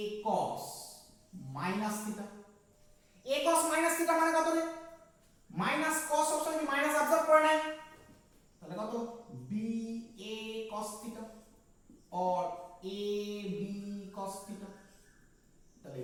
cos minus theta. a cos minus theta মানে কত রে, মাইনাস cos সবসময় কি মাইনাস অবজার্ভ করে নেয়, তাহলে কত, b a cos থিটা और a b cos থিটা। তাহলে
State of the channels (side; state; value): both; identical; correlation 1.00